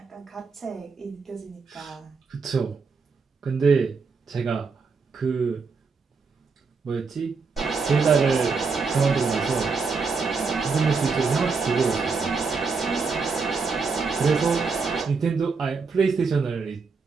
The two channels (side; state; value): left; quieter; 4.8 dB